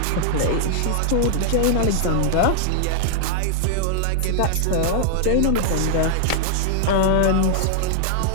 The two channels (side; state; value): both; different; correlation -0.01